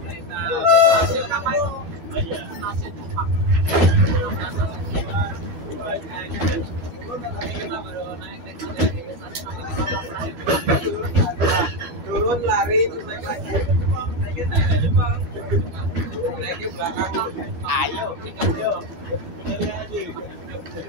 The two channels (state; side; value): late; left; 12 ms